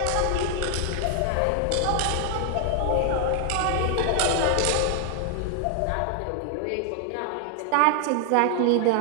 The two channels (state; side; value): different; both; correlation 0.00